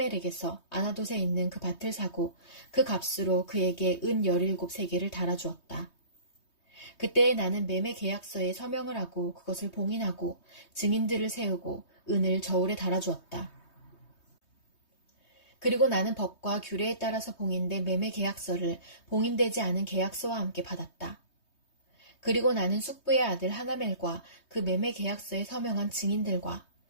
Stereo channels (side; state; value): right; late; 3.2 ms